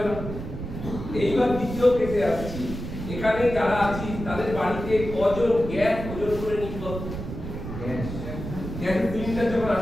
না। এইবার দ্বিতীয় কেসে আসছি। এখানে যারা আছি তাদের বাড়িতে কজন গ্যাস ওজন করে নিতে হবে? গ্যাস সিলিন্ডার যখন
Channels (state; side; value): noise; right; rumble, 8 dB below the sound